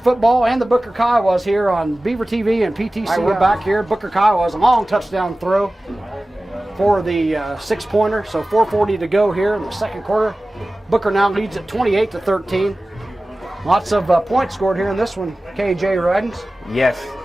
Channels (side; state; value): both; normal; correlation 0.97